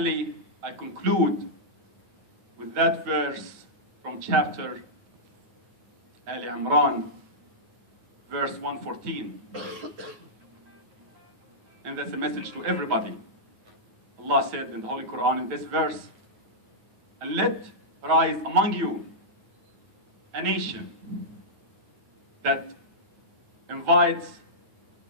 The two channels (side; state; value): left; late; 9.1 ms